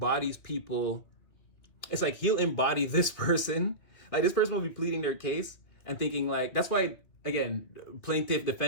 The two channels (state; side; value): late; right; 2.7 ms